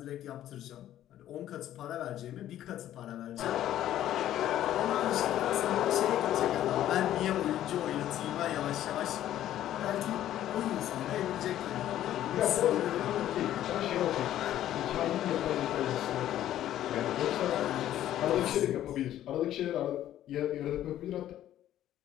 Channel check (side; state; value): right; quieter; 12.4 dB